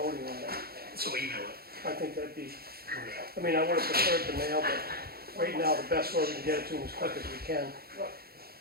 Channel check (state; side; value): late; left; 0.45 ms